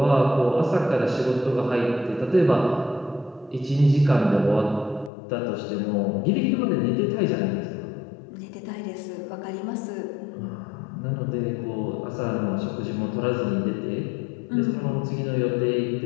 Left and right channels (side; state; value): right; drops out; at 5.1 s